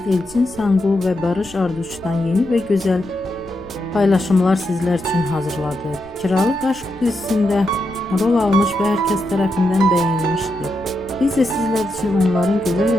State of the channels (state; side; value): noise; left; rumble, 22 dB below the sound